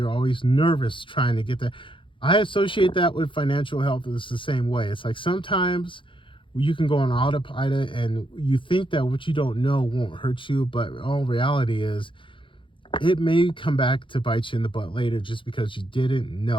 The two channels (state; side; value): late; right; 0.25 ms